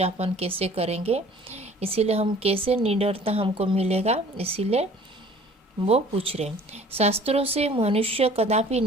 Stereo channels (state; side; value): normal; both; correlation 0.50